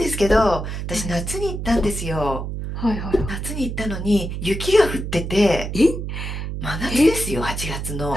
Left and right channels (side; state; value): right; noise; hum, 5 dB below the sound